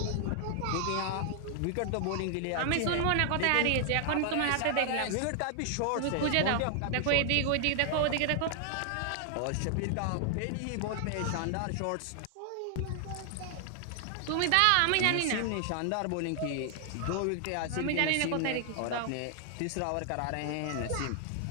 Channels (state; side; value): different; both; correlation 0.00